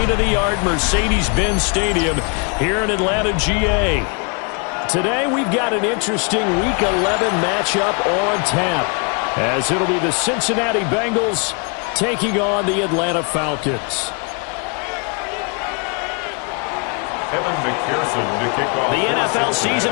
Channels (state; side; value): quieter; right; 36.2 dB